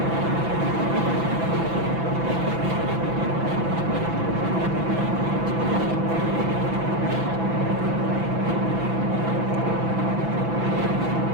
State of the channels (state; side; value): late; left; 6.0 ms